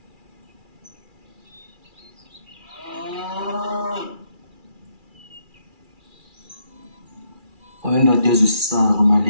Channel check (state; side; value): late; left; 2.4 ms